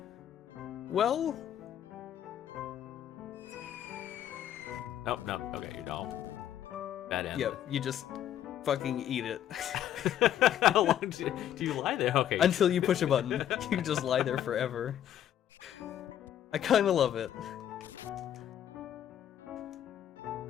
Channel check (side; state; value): right; quieter; 10.9 dB